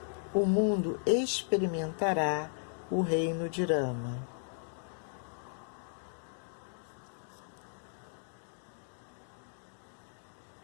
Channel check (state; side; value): silent; right; digital silence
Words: o mundo experimentará o reino de Rama.